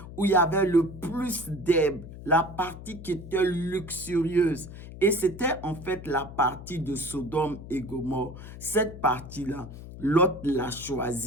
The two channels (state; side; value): noise; left; hum, 13 dB below the sound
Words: où il y avait le plus d'herbe, la partie qui était luxurieuse. Et c'était en fait la partie de Sodome et Gomorrhe. Cette partie-là, Lot l'a